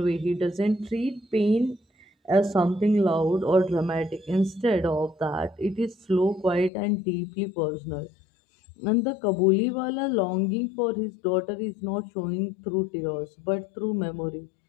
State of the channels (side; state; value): right; drops out; at 6.7 s